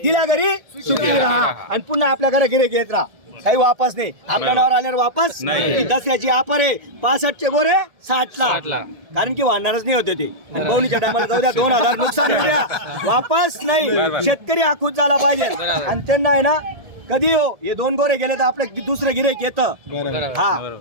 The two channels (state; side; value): late; left; 1.7 ms